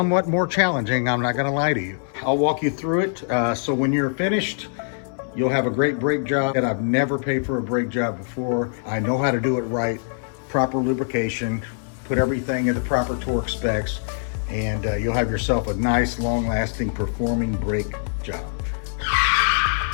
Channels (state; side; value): silent; right; digital silence